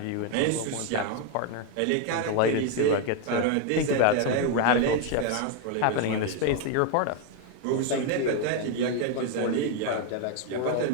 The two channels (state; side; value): different; both; correlation 0.01